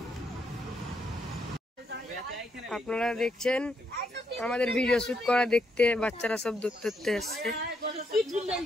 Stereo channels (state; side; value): normal; both; correlation 0.77